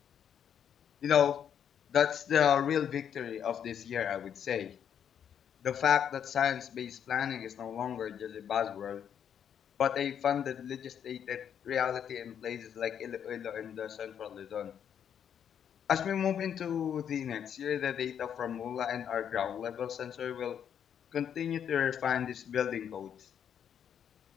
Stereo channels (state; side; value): quieter; right; 8.6 dB